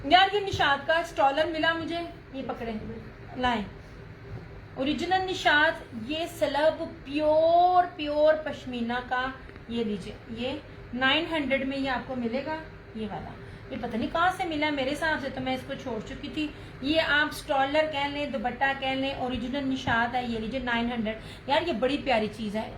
यार ये निशात का स्टॉलर मिला मुझे, ये पकड़े लाए, ओरिजिनल निशात। ये सलब प्योर प्योर पश्मीना का, ये लीजिए, ये 900 में ये आपको मिलेगा। ये वाला ये पता नहीं कहाँ से मिला, मेरे हिसाब से तो मैं इसको छोड़ चुकी थी। ये आप स्टॉलर कह लें, दुपट्टा कह लें, ओरिजिनल निशात है। ये लीजिए 900। यार ये बड़ी प्यारी चीज है।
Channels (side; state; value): both; identical; correlation 1.00